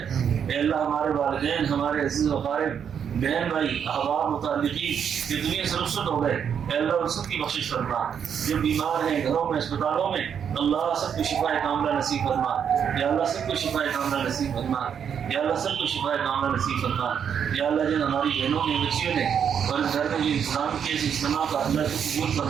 اے اللہ ہمارے والدین، ہمارے عزیز و اقارب، بہن بھائی، احباب، متعلقین یہ دنیا سے رخصت ہو گئے، اے اللہ ان سب کی بخشش فرما۔ جو بیمار ہیں گھروں میں، اسپتالوں میں، اللہ سب کو شفا کاملہ نصیب فرما، یا اللہ سب کو شفا کاملہ نصیب فرما، یا اللہ سب کو شفا کاملہ نصیب فرما۔ یا اللہ جن ہماری بہنوں نے، بچیوں نے اور اس گھر میں جو انتظام کیے اس اجتماع کا اللہ کو قبول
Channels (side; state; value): left; quieter; 7.9 dB